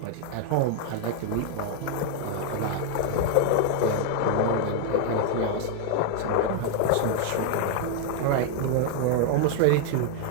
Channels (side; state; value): both; different; correlation 0.00